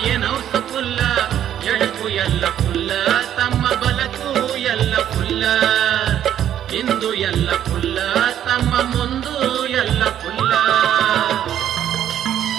ಏನು ಹೌಸ ಫುಲ್ಲ. ಎಡಕು ಎಲ್ಲ ಫುಲ್ಲ, ತಮ್ಮ ಬಲಕು ಎಲ್ಲ ಫುಲ್ಲ. ಇಂದು ಎಲ್ಲ ಫುಲ್ಲ ತಮ್ಮ ಮುಂದು ಎಲ್ಲ ಫುಲ್ಲ.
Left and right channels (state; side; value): quieter; left; 10.6 dB